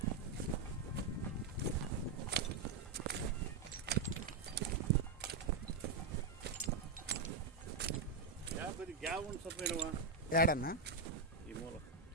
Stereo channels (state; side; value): quieter; left; 4.2 dB